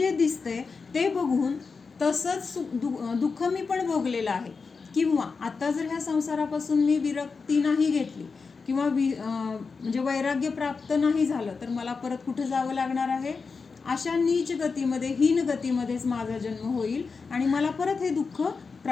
दिसतंय ते बघून तसंच दुःख मी पण भोगलेलं आहे. किंवा आता जर ह्या संसारापासून मी विरक्ती नाही घेतली किंवा म्हणजे वैराग्य प्राप्त नाही झालं, तर मला परत कुठे जावं लागणार आहे, अशा नीच गतीमध्ये, हीन गतीमध्येच माझा जन्म होईल आणि मला परत हे दुःख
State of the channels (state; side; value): quieter; right; 4.8 dB